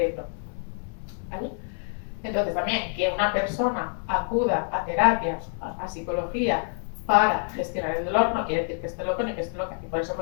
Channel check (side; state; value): right; silent; 60 dB below the other